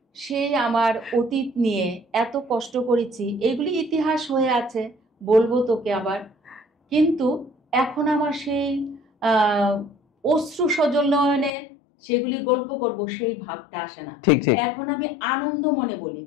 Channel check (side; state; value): right; drops out; at 11.5 s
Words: সেই আমার অতীত নিয়ে এত কষ্ট করেছি, এগুলি ইতিহাস হয়ে আছে, বলবো তোকে আবার। কিন্তু এখন আমার সেই অশ্রু সজল নয়নে সেগুলি গল্প করব সেই ভাবটা আসে না। এখন আমি আনন্দ মনে বলি।